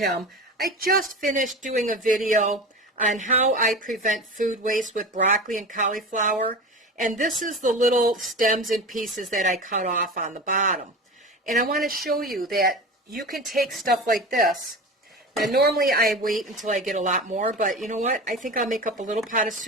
I just finished doing a video on how I prevent food waste with broccoli and cauliflower, and this is the little stems and pieces that I cut off on the bottom. And I want to show you that you can take stuff like this. Now normally I wait until I get a lot more, but you know what? I think I'll make up a little pot of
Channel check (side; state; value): both; normal; correlation 0.30